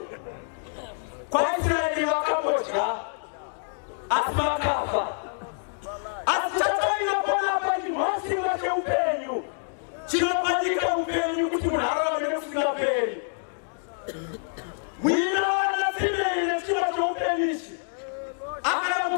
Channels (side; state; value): right; silent; digital silence